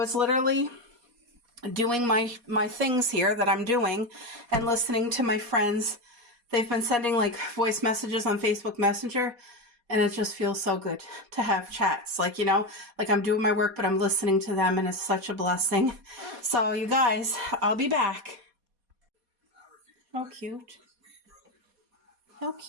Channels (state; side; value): late; left; 4.2 ms